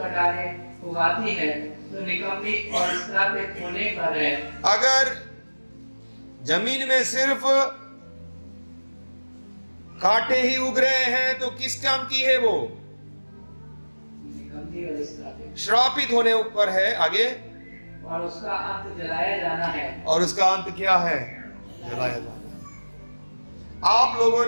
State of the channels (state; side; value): inverted; both; correlation -1.00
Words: उगाती है तो निकम्मी और श्रापित होने पर है। अगर जमीन में सिर्फ कांटे ही उग रहे हैं तो किस काम की है वो? निकम्मी और श्रापित होने ऊपर है। आगे, और उसका अंत जलाया जाना है। और उसका अंत क्या है? जलाया जाना। आप लोगों